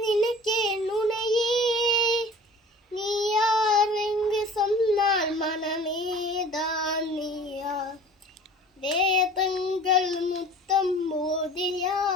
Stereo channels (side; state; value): both; normal; correlation 0.44